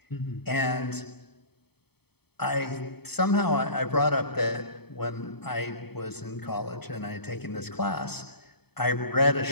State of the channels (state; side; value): late; right; 0.97 ms